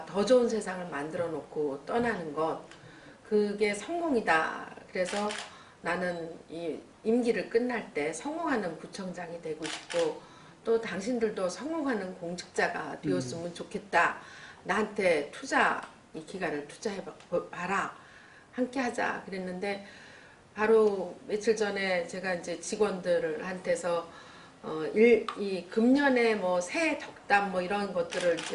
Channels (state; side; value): identical; both; correlation 1.00